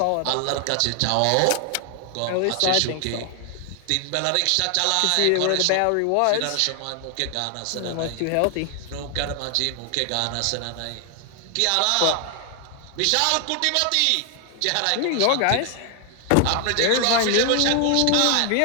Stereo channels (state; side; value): different; both; correlation 0.00